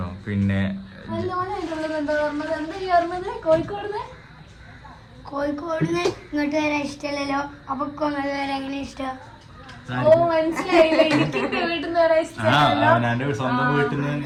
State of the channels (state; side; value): identical; both; correlation 1.00